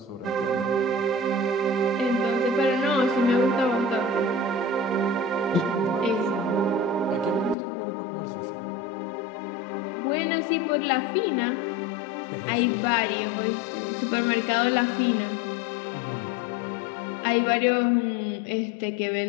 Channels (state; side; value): drops out; right; at 7.6 s